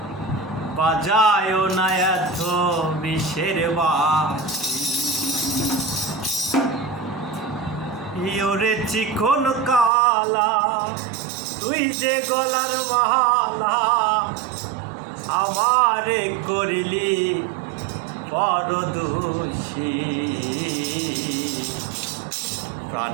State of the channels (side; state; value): left; drops out; at 9.9 s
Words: বাজায় না এত বিষের বাঁশি ওরে চিকন কালা তুই যে গলার মালা আমারে করিলি বড় দোষী